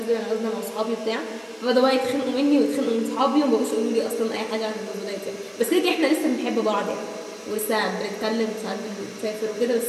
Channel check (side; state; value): both; identical; correlation 1.00